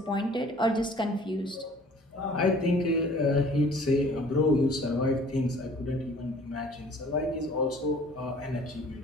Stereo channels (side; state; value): both; normal; correlation 0.52